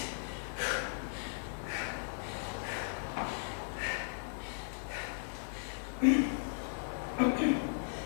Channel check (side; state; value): right; silent; digital silence